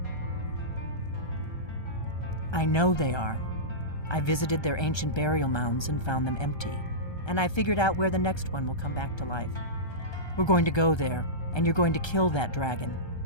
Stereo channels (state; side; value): late; right; 1.3 ms